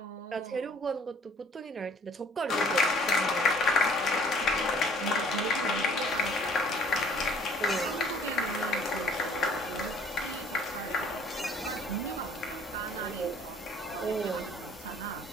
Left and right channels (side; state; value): both; normal; correlation 0.56